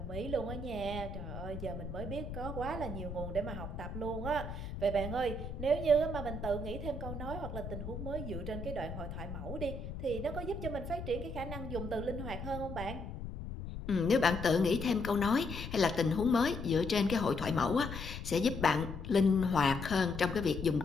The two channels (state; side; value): noise; left; rumble, 8 dB below the sound